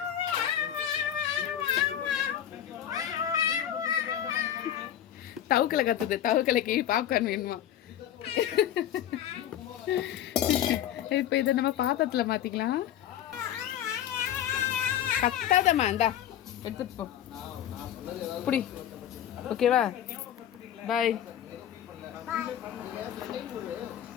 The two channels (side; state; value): right; quieter; 10.9 dB